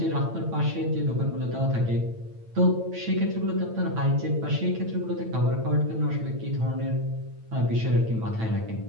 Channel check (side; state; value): left; late; 9.0 ms